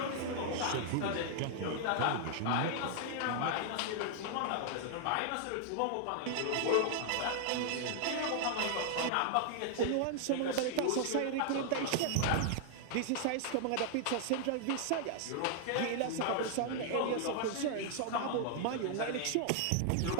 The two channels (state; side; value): different; both; correlation 0.00